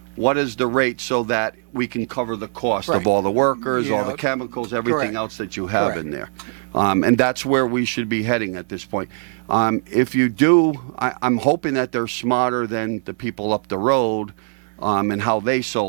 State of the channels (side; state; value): left; silent; 60 dB below the other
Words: what is the rate so that we can cover the cost Right. of all the workers, You all know, the chemicals, everything correct. else that you have Correct. in there. And that's where we should be heading at this point. If you do, I'm hoping that they're smarter than the people up the road and how they